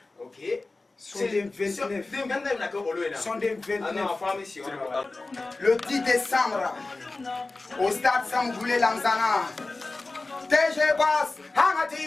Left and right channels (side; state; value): right; quieter; 3.3 dB